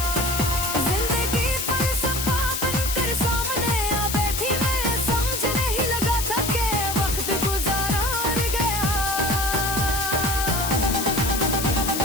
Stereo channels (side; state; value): left; noise; hiss, 3 dB below the sound